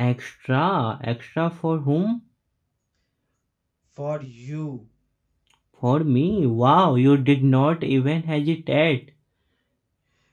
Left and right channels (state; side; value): identical; both; correlation 1.00